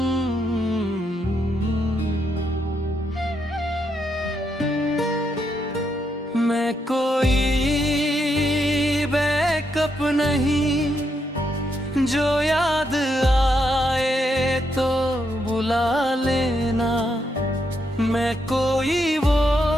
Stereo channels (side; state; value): both; normal; correlation 0.79